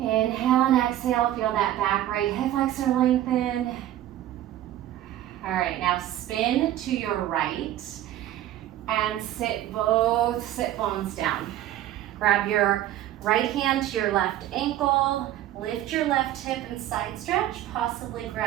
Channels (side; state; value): left; quieter; 13.0 dB